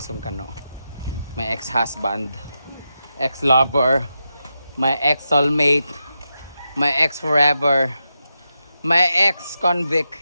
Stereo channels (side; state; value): both; inverted; correlation -0.88